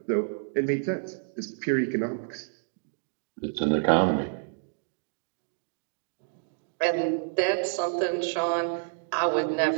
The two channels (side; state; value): left; silent; digital silence